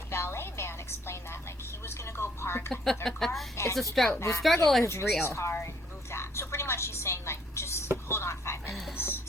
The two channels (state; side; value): normal; both; correlation 0.65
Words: Valet man explained that he was gonna go park another car. It's a struggle. The struggle is real. Car and move that. So pretty much she's saying just hold on 5 minutes.